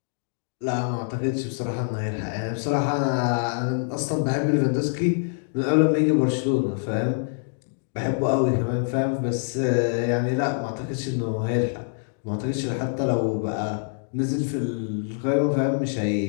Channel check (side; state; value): right; silent; digital silence